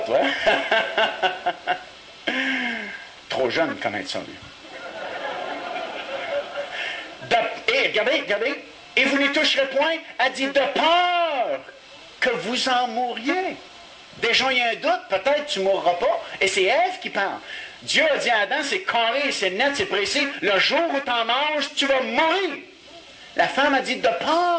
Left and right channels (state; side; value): identical; both; correlation 1.00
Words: toi? Trop jeune de connaître ça, lui. Et regardez, regardez. Et vous n'y toucherez point. Elle dit, de peur que vous en mouriez. Déjà, il y a un doute, peut-être tu ne mourras pas. Et c'est Ève qui parle. Dieu a dit à Adam, c'est carré, c'est net, c'est précis. Le jour où tu en manges, tu vas mourir. La femme a dit, de